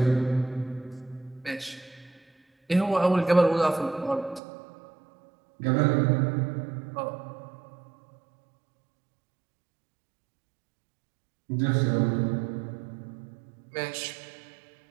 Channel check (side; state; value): left; drops out; at 4.4 s